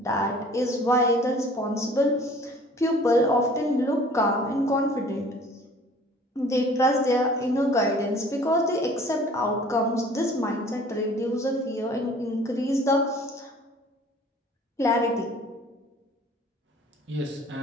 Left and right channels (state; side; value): normal; both; correlation 0.50